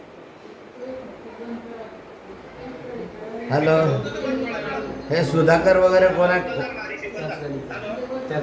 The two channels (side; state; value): both; identical; correlation 1.00